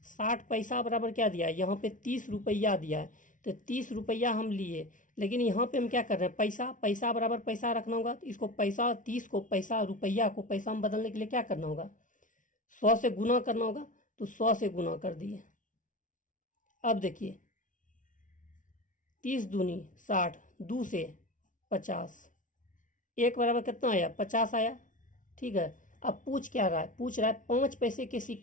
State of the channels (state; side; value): late; right; 0.38 ms